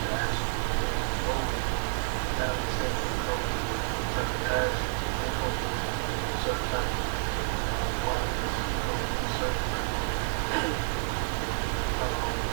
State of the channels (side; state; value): left; silent; digital silence